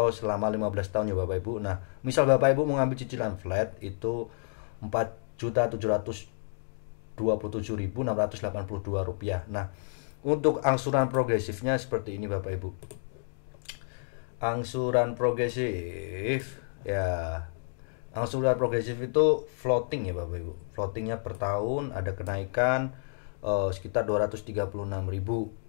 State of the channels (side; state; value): right; silent; digital silence